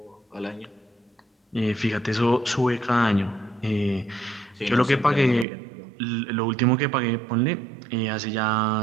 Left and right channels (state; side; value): drops out; left; at 5.5 s